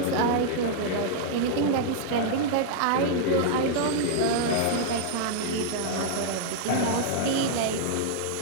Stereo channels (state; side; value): different; both; correlation -0.01